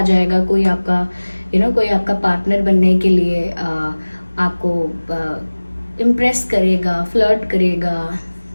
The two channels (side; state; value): both; inverted; correlation -1.00